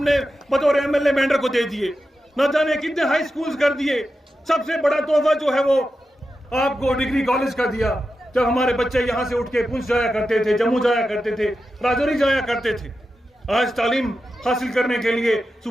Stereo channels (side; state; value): both; normal; correlation 0.91